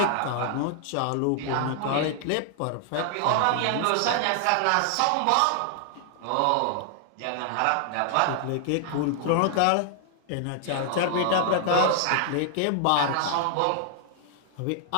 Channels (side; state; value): both; different; correlation 0.00